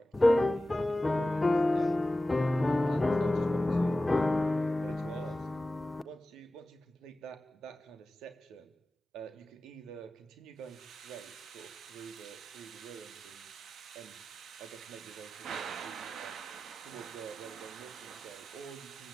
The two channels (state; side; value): normal; both; correlation 0.95